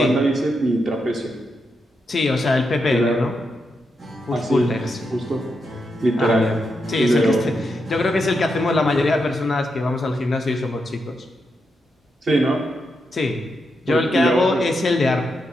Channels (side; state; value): both; normal; correlation 0.84